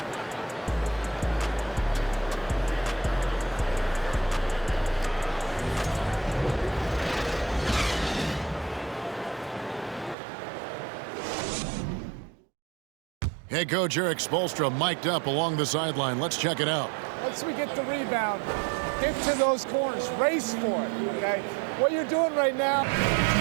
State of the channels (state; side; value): drops out; left; at 10.2 s